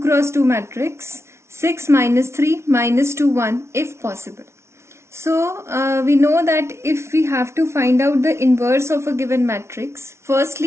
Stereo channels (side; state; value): left; late; 0.13 ms